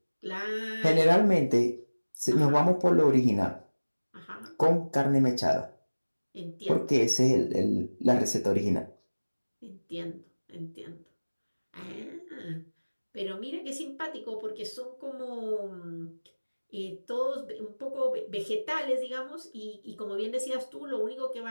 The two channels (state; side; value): inverted; both; correlation -1.00